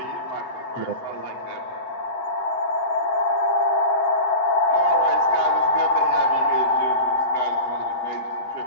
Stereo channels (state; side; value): late; right; 7.8 ms